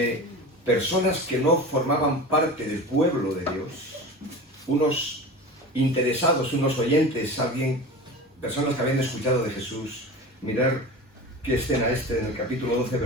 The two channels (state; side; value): normal; both; correlation 0.32